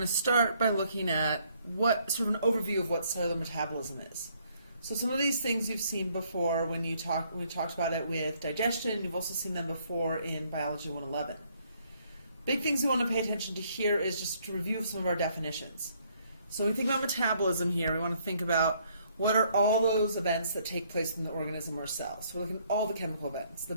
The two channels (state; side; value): inverted; both; correlation -0.67